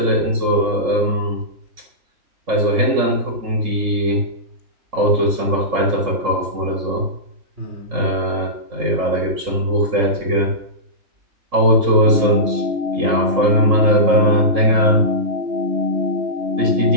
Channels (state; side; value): late; left; 3.7 ms